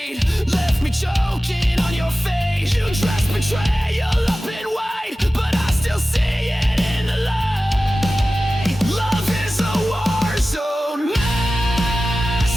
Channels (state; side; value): normal; both; correlation 0.95